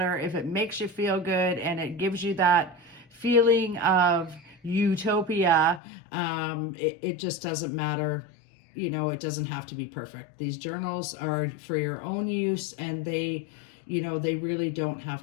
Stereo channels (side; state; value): right; drops out; at 5.8 s